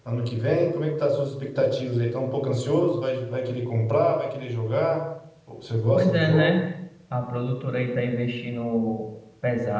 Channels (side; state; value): both; identical; correlation 1.00